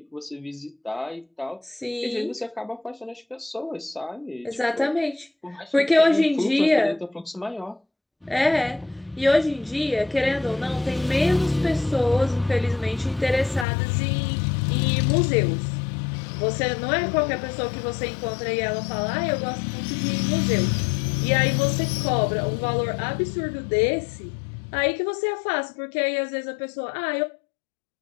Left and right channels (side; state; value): right; drops out; at 13.7 s